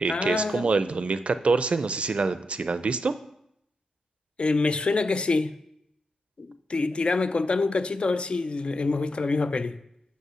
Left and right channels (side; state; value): both; normal; correlation 0.84